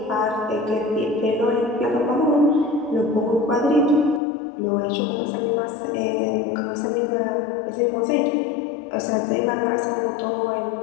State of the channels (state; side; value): drops out; right; at 4.2 s